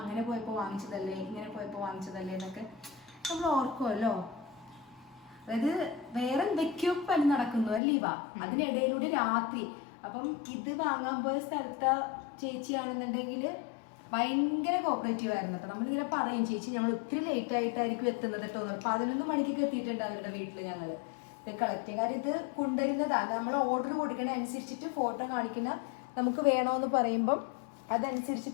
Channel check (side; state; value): right; drops out; at 7.8 s